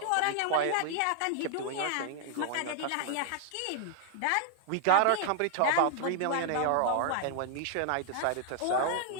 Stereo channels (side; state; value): both; different; correlation 0.00